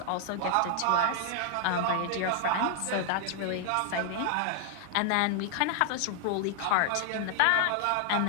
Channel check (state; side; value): different; both; correlation 0.00